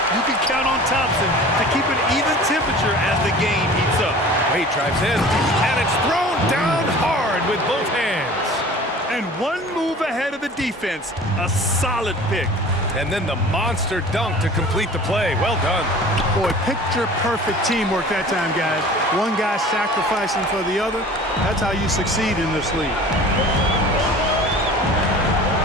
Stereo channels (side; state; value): both; normal; correlation 0.43